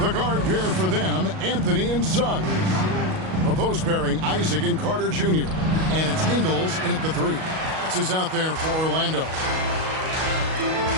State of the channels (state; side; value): late; left; 38 ms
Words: guard pair for them, Anthony and Suggs. The post pairing, Isaac and Carter Jr. And it's Ingles in at the 3. This is out there for Orlando.